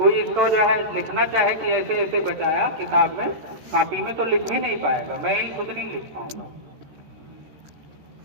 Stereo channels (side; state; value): left; late; 13 ms